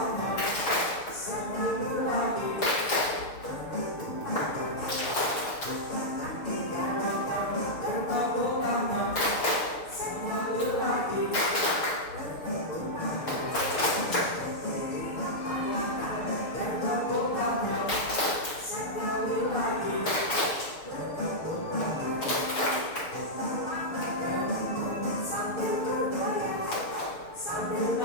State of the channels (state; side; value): late; right; 6.6 ms